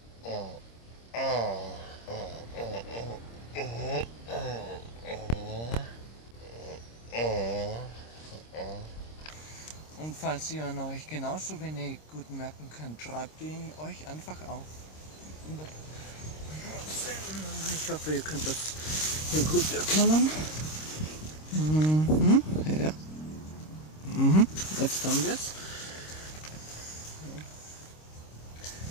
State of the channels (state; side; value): late; right; 26 ms